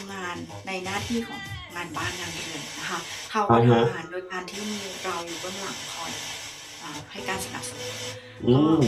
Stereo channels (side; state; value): both; identical; correlation 1.00